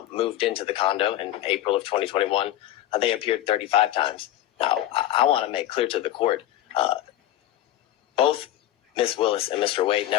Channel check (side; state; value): right; quieter; 13.4 dB